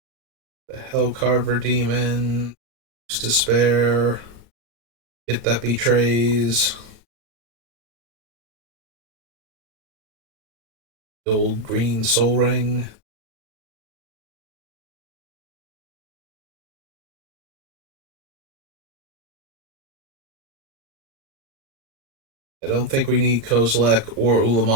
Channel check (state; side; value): late; left; 35 ms